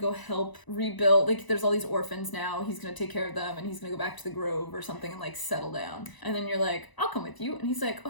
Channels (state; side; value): late; right; 1.0 ms